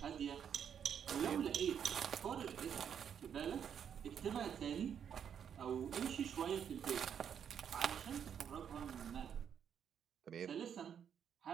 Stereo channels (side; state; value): left; quieter; 8.2 dB